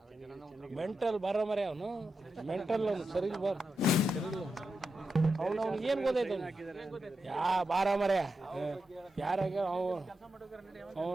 ಮೆಂಟಲ್ ಬರ ಮರೆ ಅವನು ಮೆಂಟಲ್ ಅವನು ಸರಿ ಬರ್ ಸರಿ ಅವನು ಅವ್ನಿಗೆ ಏನು ಗೊತ್ತೈತೆ ಯಾ ಬಾರ ಮರೆ ಯಾರಾಗ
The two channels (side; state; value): both; normal; correlation 0.88